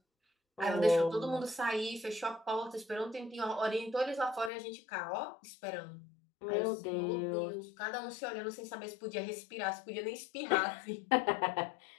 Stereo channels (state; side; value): drops out; right; at 4.5 s